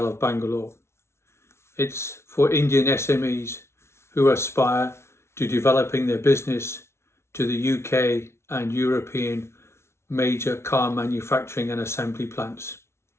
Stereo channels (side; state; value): right; late; 0.13 ms